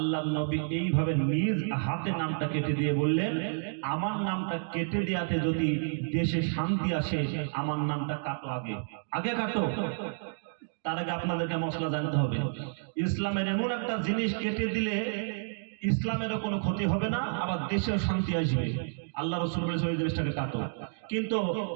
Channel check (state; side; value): silent; left; digital silence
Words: নবী এইভাবে নিজ হাতে নামটা কেটে দিয়ে বললেন, আমার নামটা কেটে দেওয়াতে যদি দেশে শান্তি আসে, আমার নামটা কাটো, আগে আগে কাটো। তার আগে আপনাদেরকে মশলা জানতে হবে, ইসলামের এমন একটা জিনিস কেটে দিলে ইসলামেরও কোনো ক্ষতি হবে না, আবার দেশেও শান্তি আসবে। আল্লাহ রাসূল বলেছে ওই জিনিসটাকে কাটো। কিন্তু